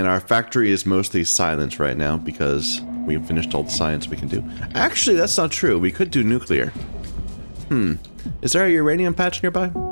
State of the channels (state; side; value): inverted; both; correlation -1.00